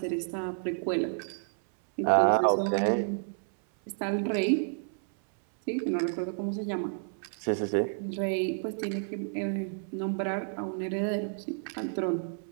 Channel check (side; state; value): left; silent; 58 dB below the other